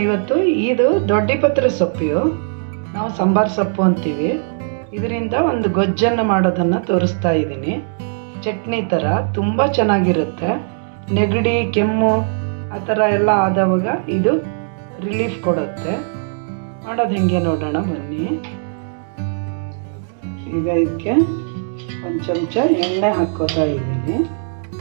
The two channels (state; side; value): silent; left; digital silence